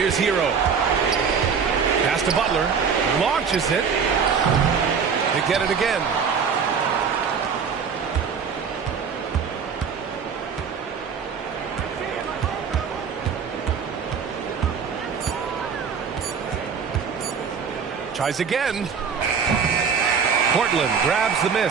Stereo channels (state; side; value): quieter; left; 6.3 dB